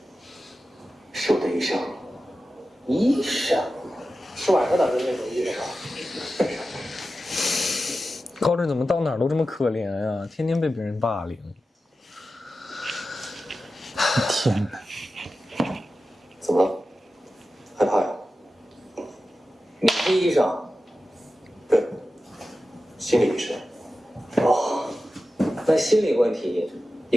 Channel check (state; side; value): normal; both; correlation 0.93